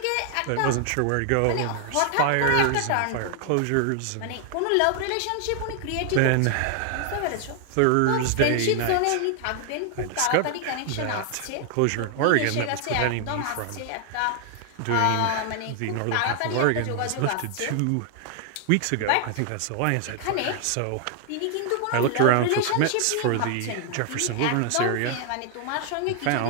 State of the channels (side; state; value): both; different; correlation 0.00